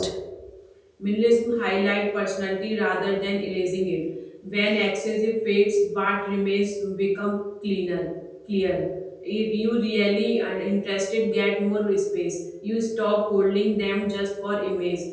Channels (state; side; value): identical; both; correlation 1.00